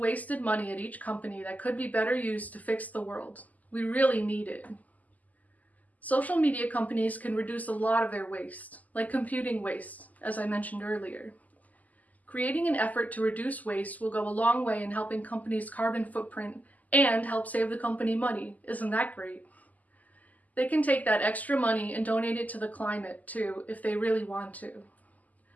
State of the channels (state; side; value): late; right; 0.078 ms